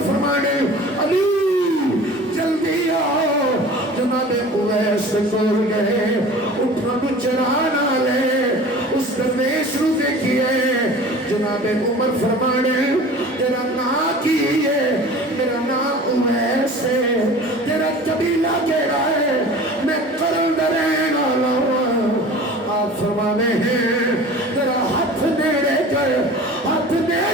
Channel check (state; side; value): normal; both; correlation 0.41